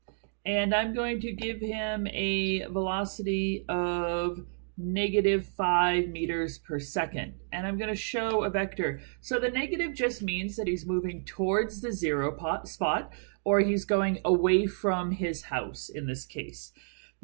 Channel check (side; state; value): left; silent; digital silence